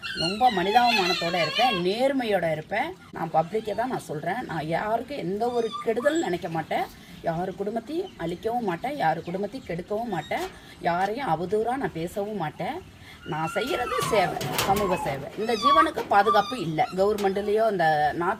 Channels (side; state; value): both; identical; correlation 1.00